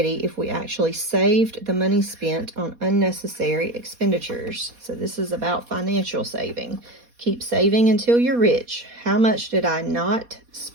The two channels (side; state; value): left; late; 4.2 ms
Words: if we actually saved the money spent on unnecessary expenditures. So this is about financial saving. Keep saving until you're rich. How much did I not